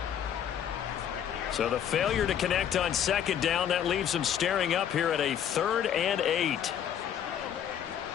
So the failure to connect on 2nd down, that leaves them staring up here at a 3rd and 8.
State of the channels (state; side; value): quieter; right; 9.4 dB